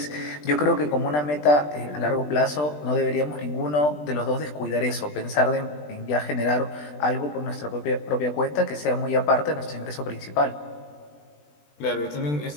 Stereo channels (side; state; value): right; late; 20 ms